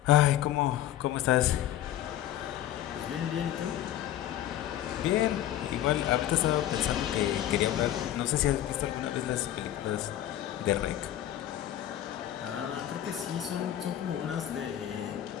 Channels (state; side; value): quieter; right; 12.2 dB